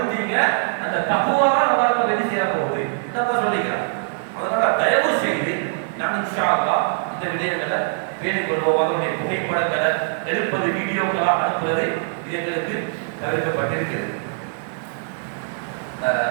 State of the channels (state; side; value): silent; left; 57 dB below the other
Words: அந்த தக்வா தான் உங்களுக்கு வெற்றி செய்ய போகுது. என்னப்பா சொல்லிக்கிறான். அதனால தயவு செய்து நான் இன்ஷா அல்லாஹ் இந்த விடயங்களை பேணிக் கொள்வோம். அதனுடைய புகைப்படங்களை எடுப்பது, வீடியோக்களாக அனுப்புவது இது எங்களுக்கு தவிர்க்கப்பட்டிருக்கிறது.